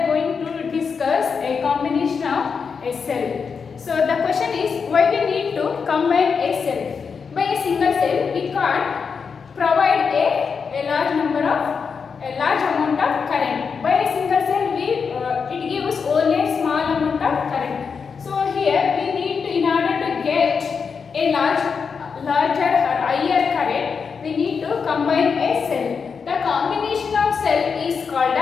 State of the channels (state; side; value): quieter; right; 5.8 dB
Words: going to discuss a combination of a cell. So the question is, why we need to combine a cell? By a single cell, we can't provide a large amount of current. By a single cell, it gives only a small amount of current. So here we need to, in order to get a larger or higher current, we need to combine a cell. The combination of cell is called